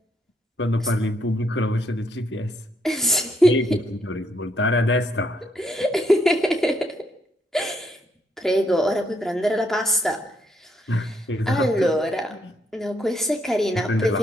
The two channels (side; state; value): both; normal; correlation 0.74